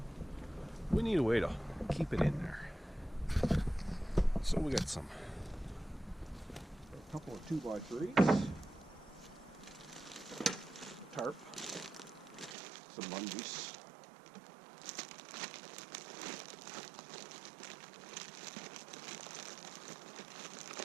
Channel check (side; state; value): left; drops out; at 12.6 s